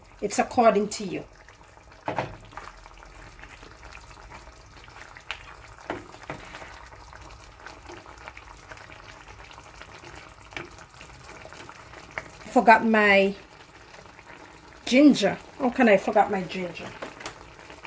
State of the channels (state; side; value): identical; both; correlation 1.00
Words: it's according to you. Forgot my ginger. How can I forget my ginger?